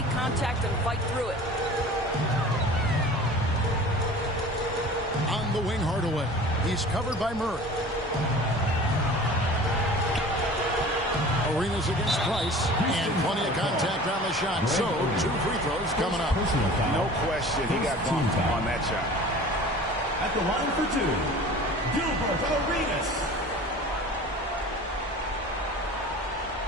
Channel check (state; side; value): normal; both; correlation 0.41